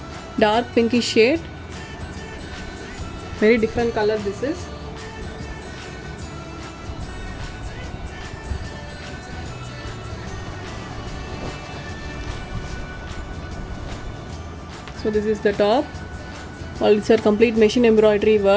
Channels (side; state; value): both; identical; correlation 1.00